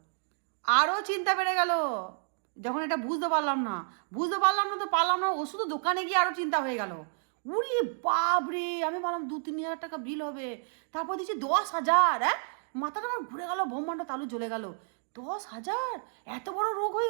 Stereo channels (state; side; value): silent; left; digital silence